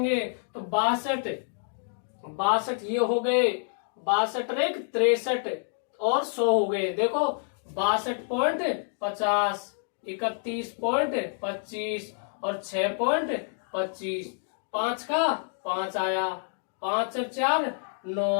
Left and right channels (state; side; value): silent; right; digital silence